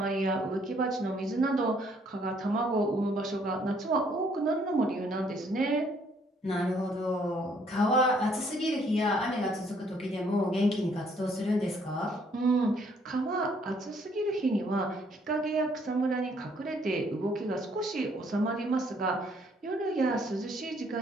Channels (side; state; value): both; normal; correlation 0.65